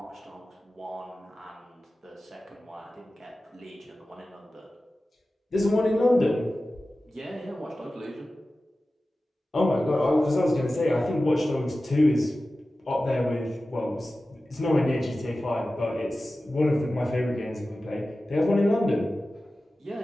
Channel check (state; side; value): normal; both; correlation 0.95